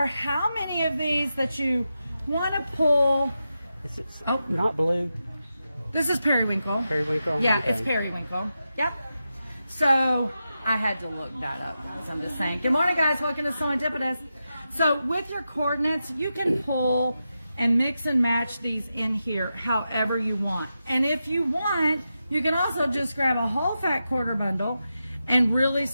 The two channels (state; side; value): inverted; both; correlation -0.89